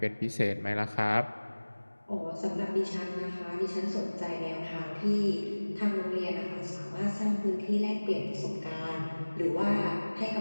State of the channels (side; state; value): both; inverted; correlation -1.00